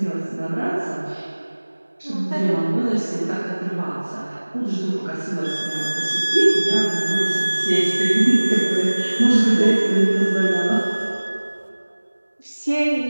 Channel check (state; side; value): inverted; both; correlation -1.00